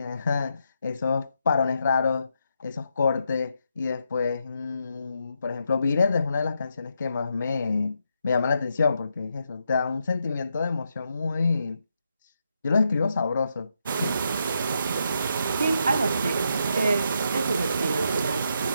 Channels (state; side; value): inverted; both; correlation -0.81